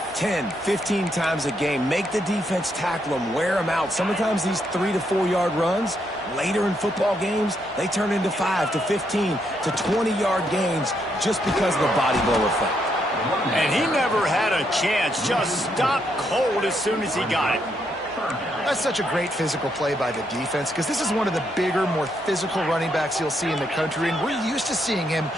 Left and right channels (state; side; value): normal; both; correlation 0.77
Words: 10, 15 times a game. Make the defense tackle them, wear them out. Sometimes these 3 to 4 yard runs, later in football games, they turn into 5 to 15 to 20 yard gains just because of the body blow effect. And he never had a chance, just stopped cold as soon as he got it. That's such a great physical play by the defense because this is one of the bigger, more physical running backs you'll see in the country, and we're used to seeing him